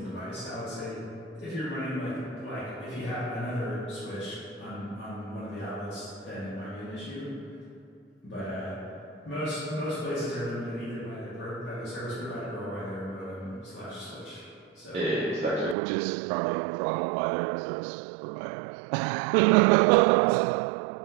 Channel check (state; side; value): drops out; left; at 15.8 s